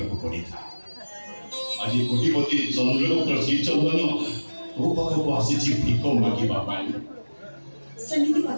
ପଡ଼ିଥାଏ ଆଜି କୋଟିପତି ଚନ୍ଦ୍ରଗୁପ୍ତ ଶ୍ରୀଚନ୍ଦନ ତୋ ପାଖକୁ ଆସିଛି ଭିକ ମାଗିବା ପାଇଁ। ସେମିତି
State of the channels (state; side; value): inverted; both; correlation -1.00